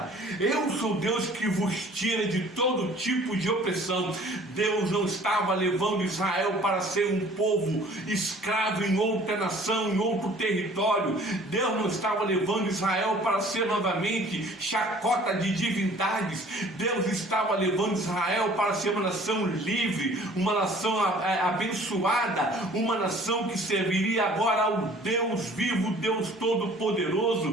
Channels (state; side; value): normal; both; correlation 0.51